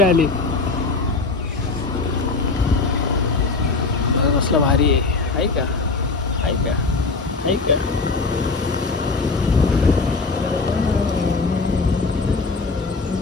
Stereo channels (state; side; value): quieter; right; 3.9 dB